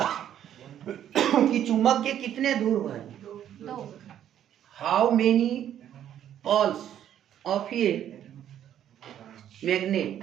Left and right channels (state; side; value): quieter; left; 10.6 dB